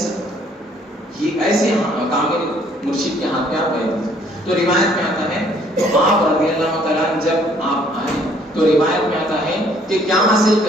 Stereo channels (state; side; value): normal; both; correlation 0.62